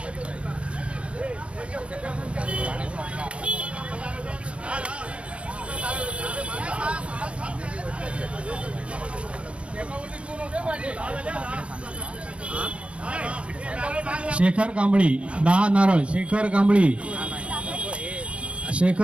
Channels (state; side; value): late; left; 0.060 ms